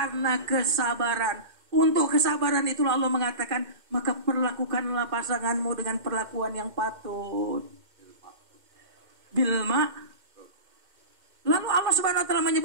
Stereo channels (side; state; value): left; late; 2.1 ms